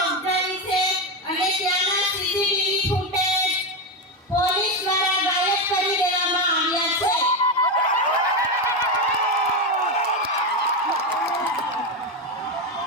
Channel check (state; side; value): normal; both; correlation 0.11